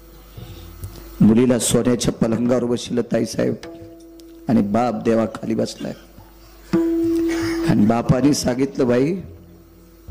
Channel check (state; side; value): identical; both; correlation 1.00